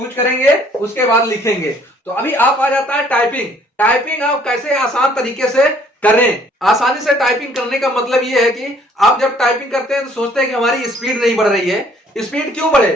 करेंगे, उसके बाद लिखेंगे। तो अभी आप आ जाता है टाइपिंग आप कैसे आसान तरीके से करें। आसानी से टाइपिंग करने का मतलब ये है कि आप जब टाइपिंग करते हैं तो सोचते हैं कि हमारी स्पीड नहीं बढ़ रही है। स्पीड क्यों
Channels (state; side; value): normal; both; correlation 0.60